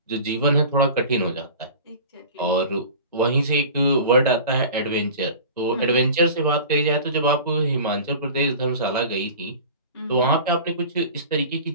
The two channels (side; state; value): both; inverted; correlation -0.38